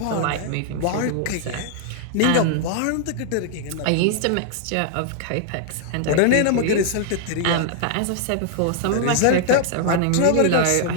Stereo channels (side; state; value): both; different; correlation -0.01